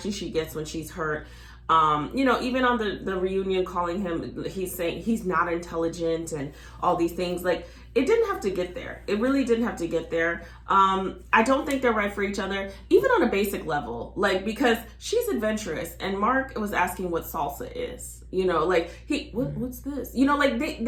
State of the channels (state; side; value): identical; both; correlation 1.00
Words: she gets when she's hurt. You know, even on the reunion, calling him, he's saying he's not intelligent and all these things. Like, it didn't have to get there. It really didn't have to get there. I don't think they're right for each other, even on a basic level. Like, because she's adventurous and Mark was asking what salsa is. You know, like, what's this? You know, like,